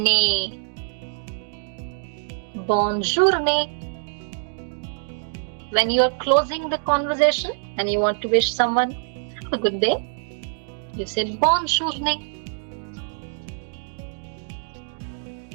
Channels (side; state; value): left; silent; digital silence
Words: Bonjour, ne. When you are closing the conversation and you want to wish someone a good day, you say bonjour, ne.